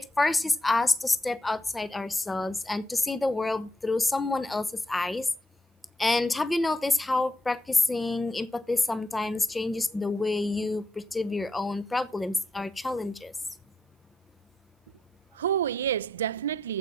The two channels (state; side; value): normal; both; correlation 0.81